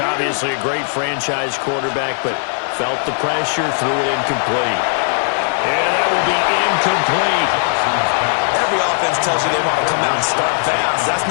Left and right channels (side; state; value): right; silent; digital silence